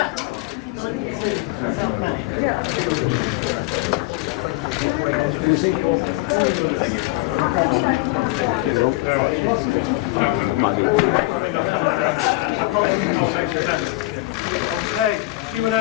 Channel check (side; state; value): right; quieter; 20.1 dB